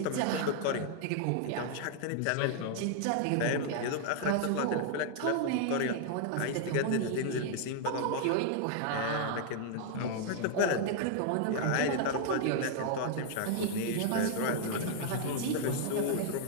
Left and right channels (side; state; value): both; different; correlation 0.00